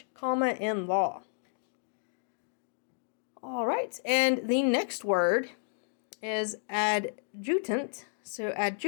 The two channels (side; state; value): right; silent; digital silence